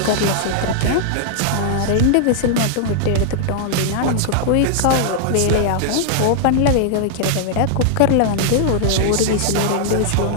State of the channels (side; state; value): both; different; correlation -0.01